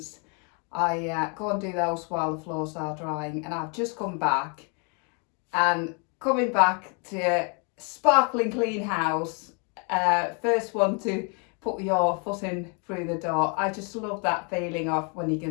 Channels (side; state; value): right; quieter; 36.2 dB